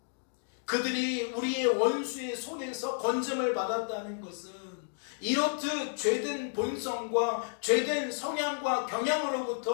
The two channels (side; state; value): right; silent; digital silence